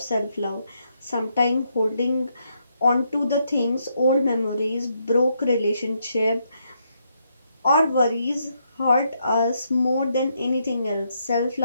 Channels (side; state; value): both; inverted; correlation -0.77